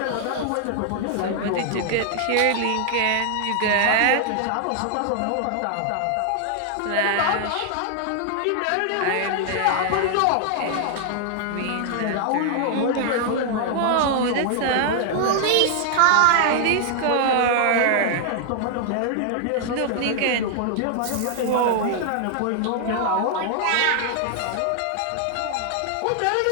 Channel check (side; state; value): both; different; correlation 0.00